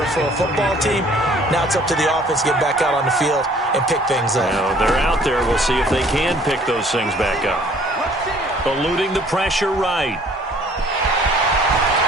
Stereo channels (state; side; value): normal; both; correlation 0.56